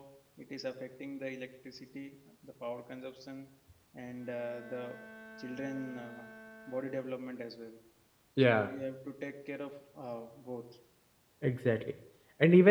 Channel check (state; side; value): identical; both; correlation 1.00